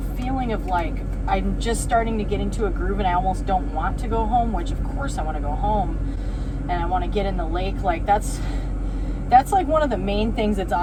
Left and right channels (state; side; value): identical; both; correlation 1.00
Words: feeling of like I'm just starting to get into a groove and I almost don't want to go home, which of course I want to go home and I want to get in the lake. Like that's like one of the main things that's